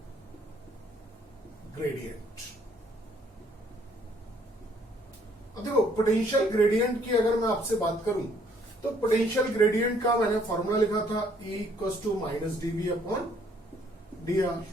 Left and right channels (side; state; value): both; normal; correlation 0.64